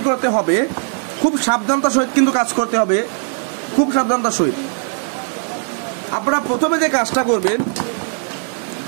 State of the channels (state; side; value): silent; left; 57 dB below the other